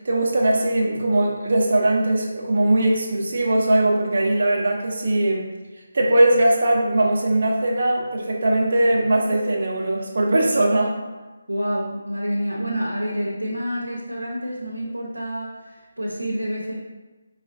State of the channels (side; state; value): both; inverted; correlation -0.93